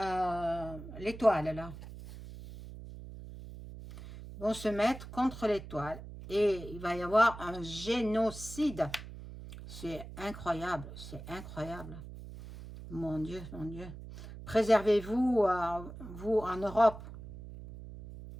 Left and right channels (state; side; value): noise; right; hum, 13 dB below the sound